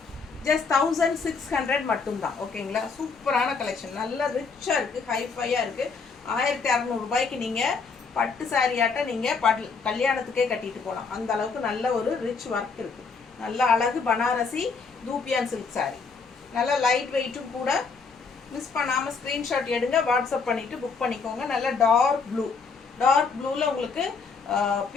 ஜஸ்ட் 1600 மட்டும்தான். ஓகேங்களா, சூப்பரான கலெக்ஷன், நல்ல ரிச்சாக இருக்குது, ஹைஃபையாக இருக்குது. 1600 நீங்கள் பட்டு சாரியாட்ட நீங்கள் கல்யாணத்துக்கே கட்டிட்டு போகலாம். அந்த அளவுக்கு நல்ல ஒரு ரிச் ஒர்க் இருக்குது. நல்ல அழகு பனாரசி தூப்பியான் சில்க் சாரி, நல்ல லைட் வெயிட்டும் கூட. மிஸ் பண்ணாமல் ஸ்க்ரீன்ஷாட் எடுங்க, வாட்ஸ்அப் பண்ணிவிட்டு புக் பண்ணிக்கோங்க. நல்ல டார்க் ப்ளூ, டார்க் ப்ளூவில் உங்களுக்கு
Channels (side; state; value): right; quieter; 4.9 dB